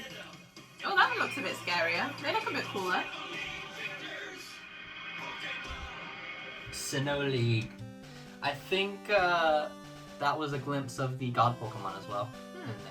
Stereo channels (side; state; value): both; identical; correlation 1.00